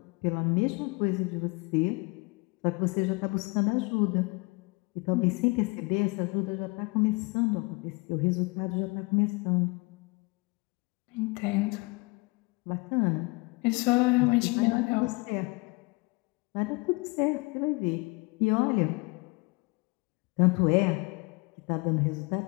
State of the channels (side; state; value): right; quieter; 27.4 dB